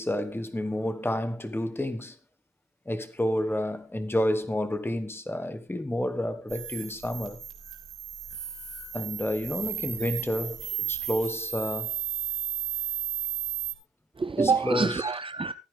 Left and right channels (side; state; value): both; normal; correlation 0.74